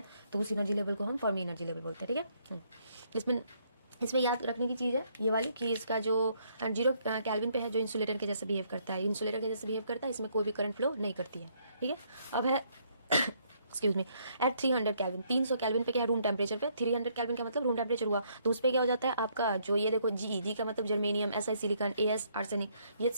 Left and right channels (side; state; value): both; inverted; correlation -0.70